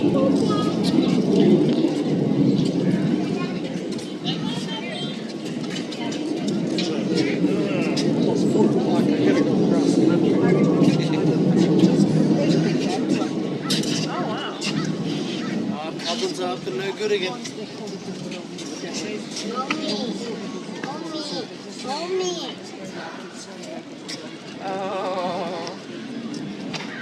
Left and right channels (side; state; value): both; identical; correlation 1.00